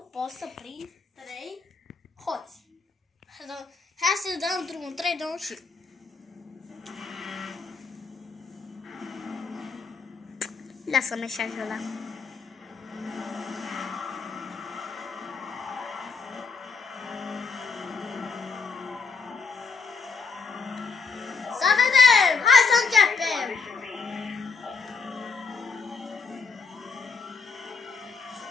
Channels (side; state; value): right; quieter; 5.1 dB